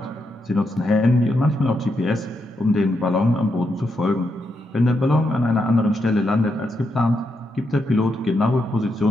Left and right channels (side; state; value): both; normal; correlation 0.82